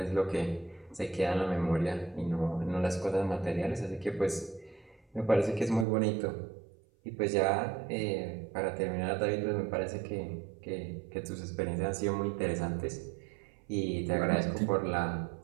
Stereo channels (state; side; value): drops out; left; at 5.9 s